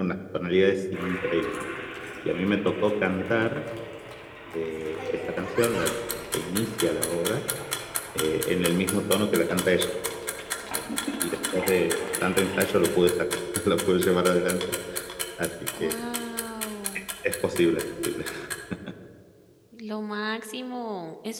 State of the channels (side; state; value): both; identical; correlation 1.00